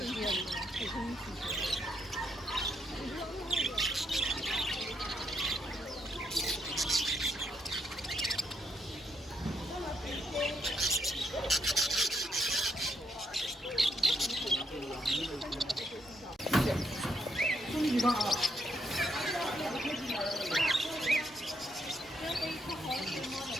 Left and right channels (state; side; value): normal; both; correlation 0.76